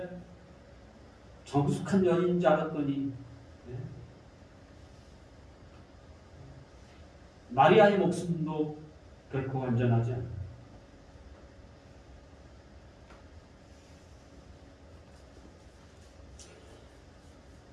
정숙한 여인인 줄 알았더니 마리아의 목숨도 결코 안전하지 않다.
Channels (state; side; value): identical; both; correlation 1.00